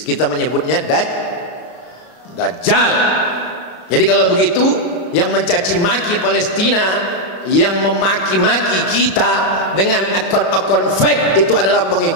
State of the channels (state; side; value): late; right; 34 ms